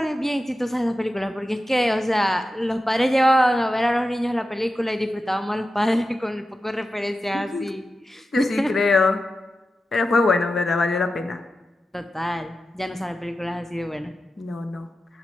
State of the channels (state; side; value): normal; both; correlation 0.92